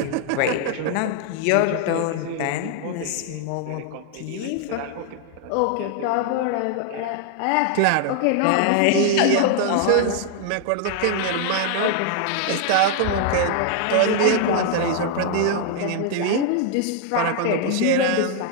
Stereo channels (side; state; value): both; different; correlation 0.00